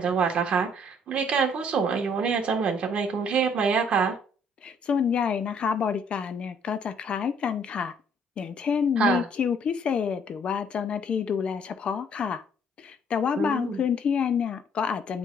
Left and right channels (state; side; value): normal; both; correlation 0.63